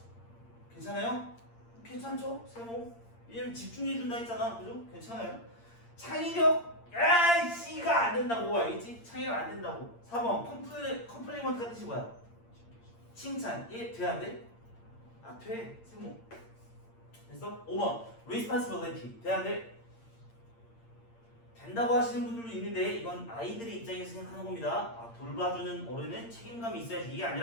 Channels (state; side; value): late; right; 8.7 ms